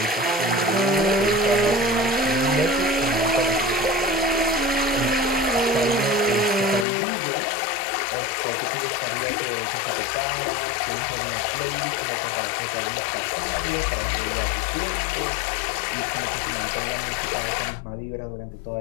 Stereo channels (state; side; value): drops out; right; at 6.9 s